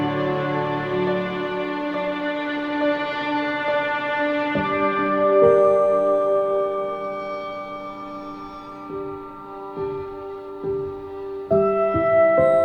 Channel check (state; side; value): identical; both; correlation 1.00